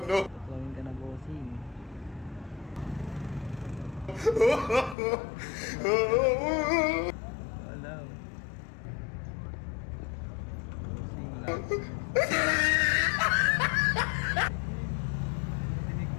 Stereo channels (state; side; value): drops out; right; at 5.0 s